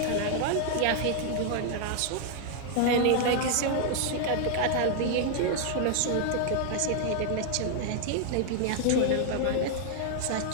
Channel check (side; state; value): both; different; correlation 0.00